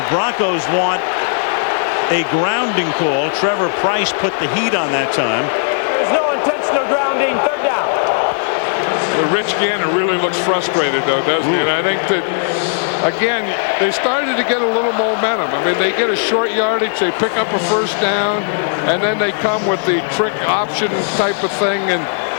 Broncos want a grounding call. Trevor Price put the heat on that time. There's no intentional grounding. 3rd down. Well, Rich Gannon really looks frustrated, though, doesn't he? And I think that, again, they started to get a little momentum. I mean, they get a short yardage, they pick up a 1st down, and then they come with the trick option type of thing, and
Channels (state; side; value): silent; right; digital silence